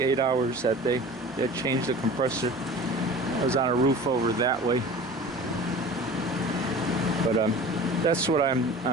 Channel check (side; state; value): both; normal; correlation 0.40